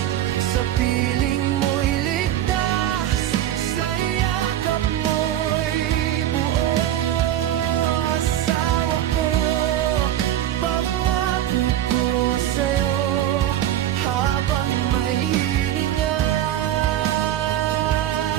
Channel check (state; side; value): quieter; left; 12.1 dB